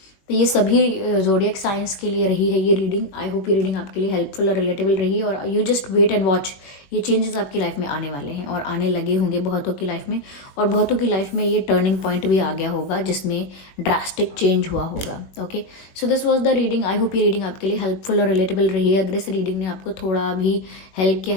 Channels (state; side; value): late; right; 20 ms